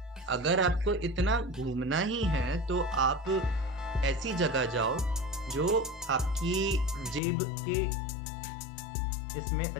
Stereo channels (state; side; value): drops out; right; at 7.2 s